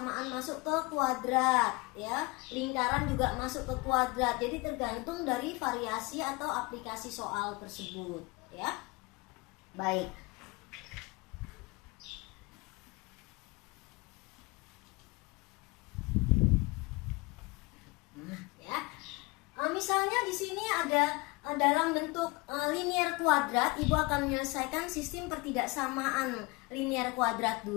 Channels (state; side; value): quieter; right; 25.4 dB